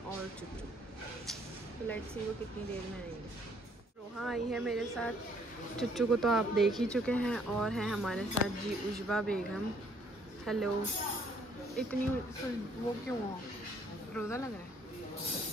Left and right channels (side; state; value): both; normal; correlation 0.64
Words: और चुच्चू। तो लेट्स सी वो कितनी देर में आएंगे। रोहा आई है मेरे साथ, चुच्चू को तो आप देख ही चुके हैं, और हैं हमारे साथ जी उशबा बेगम। हेलो। इतनी वो क्यों हो, रोज़ा लग रहा है?